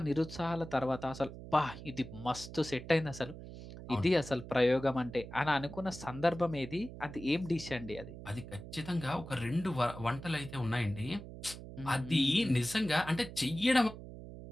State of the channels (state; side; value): noise; right; hum, 13 dB below the sound